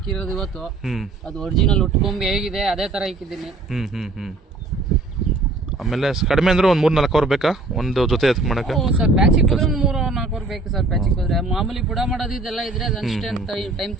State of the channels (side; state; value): left; quieter; 3.3 dB